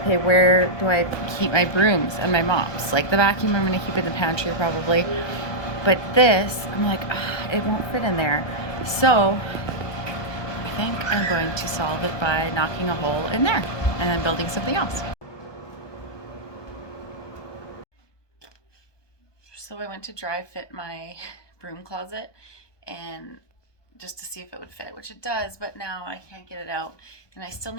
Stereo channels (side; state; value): right; late; 1.2 ms